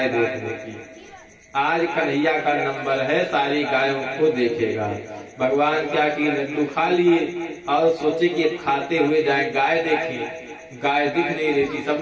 देखने की। आज कन्हैया का नंबर है, सारी गायों को देखेगा। भगवान क्या की लड्डू खा लिए और सोचे कि खाते हुए जाए गाय देखें, गाय दिख नहीं रही थी।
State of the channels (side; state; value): both; identical; correlation 1.00